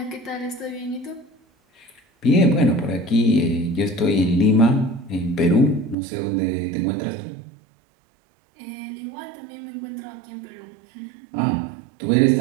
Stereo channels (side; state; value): left; drops out; at 6.0 s